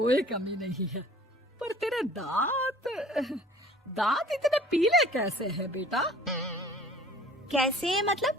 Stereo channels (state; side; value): normal; both; correlation 0.50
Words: कमी नहीं है, पर तेरे दांत इतने पीले कैसे हैं बेटा? कैसे मतलब?